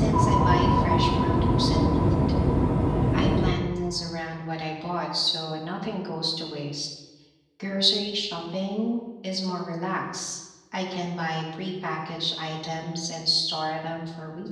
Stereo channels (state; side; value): identical; both; correlation 1.00